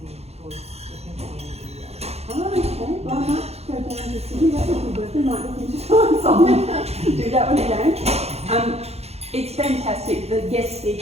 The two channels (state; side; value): late; left; 0.30 ms